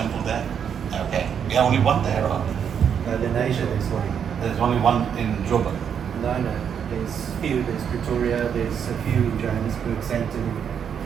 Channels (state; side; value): quieter; left; 7.9 dB